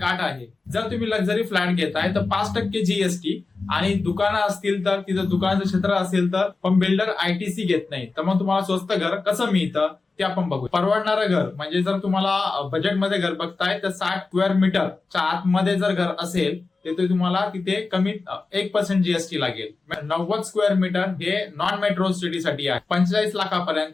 अट आहे. जर तुम्ही लक्झरी फ्लॅट घेताय तर 5% जीएसटी, आणि दुकानं असतील तर तिथं दुकानाचं क्षेत्र असेल तर पण बिल्डर आयटीसी घेत नाही. तर मग तुम्हाला स्वस्त घर कसं मिळतं ते आपण बघू. परवडणारं घर म्हणजे जर तुम्हाला बजेटमध्ये घर बघताय तर 60 स्क्वेअर मीटरच्या आतमध्ये जर घर असेल तर तुम्हाला तिथे कमीत 1% जीएसटी लागेल. 90 स्क्वेअर मीटर हे नॉन मेट्रो सिटीसाठी आहे. 45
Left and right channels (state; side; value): quieter; right; 3.9 dB